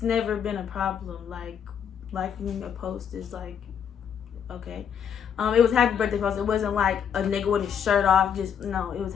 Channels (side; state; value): right; quieter; 8.0 dB